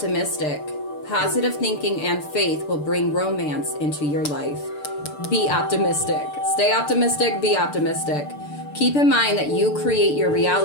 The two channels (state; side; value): late; right; 6.8 ms